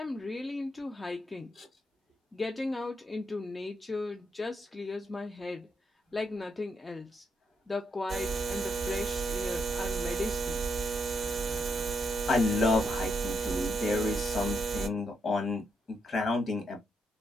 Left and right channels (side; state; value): both; normal; correlation 0.79